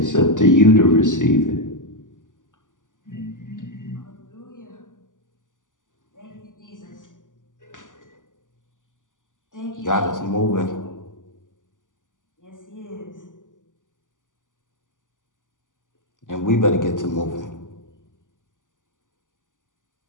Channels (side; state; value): right; late; 0.87 ms